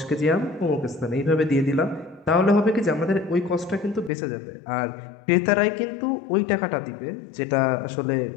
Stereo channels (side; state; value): right; drops out; at 4.1 s